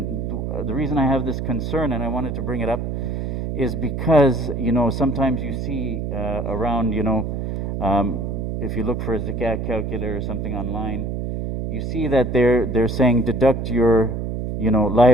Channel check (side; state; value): right; noise; hum, 3 dB below the sound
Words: the reason I have this concern, and I wanted to bring it up, is because, sometimes you see around, if you look for a zakah calculator or something online, you see that they're saying deduct your,